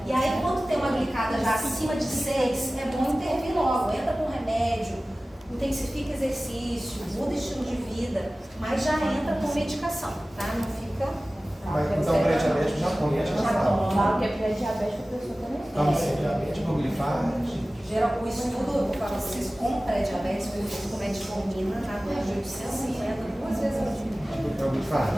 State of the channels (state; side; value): normal; both; correlation 0.97